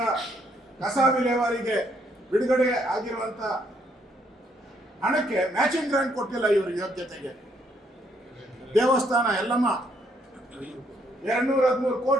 ಕಸ ವಿಲೇವಾರಿಗೆ ಬಿಡುಗಡೆ ಆಗಿರುವಂತ ಹಣಕ್ಕೆ ಮ್ಯಾಚಿಂಗ್ ಗ್ರಾಂಟ್ ಕೊಟ್ಟಿಲ್ಲ ಇವರು ಯೋಗ್ಯತೆಗೆ. ದೇವಸ್ಥಾನ ಎಲ್ಲಮ್ಮ 213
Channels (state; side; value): normal; both; correlation 0.71